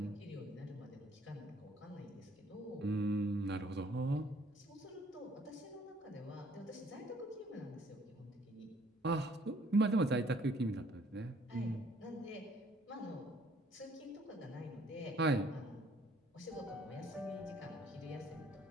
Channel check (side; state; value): both; normal; correlation 0.61